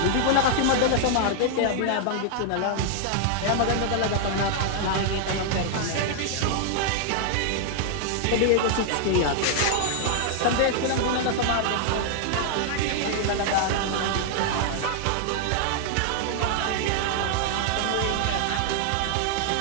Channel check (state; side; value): different; both; correlation -0.01